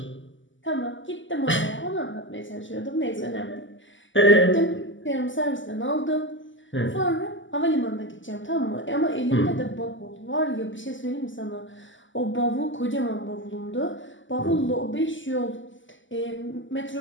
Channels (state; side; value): late; right; 0.55 ms